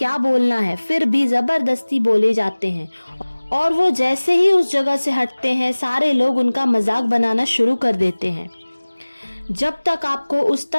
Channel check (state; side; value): inverted; both; correlation -1.00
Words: बोलना है, फिर भी जबरदस्ती बोले जाते हैं और वो जैसे ही उस जगह से हटते हैं सारे लोग उनका मजाक बनाना शुरू कर देते हैं। जब तक आपको उस